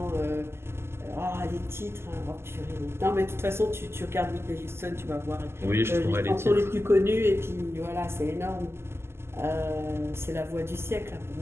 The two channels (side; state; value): left; late; 0.12 ms